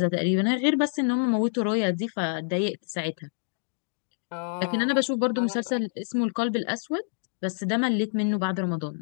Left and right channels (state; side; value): silent; right; digital silence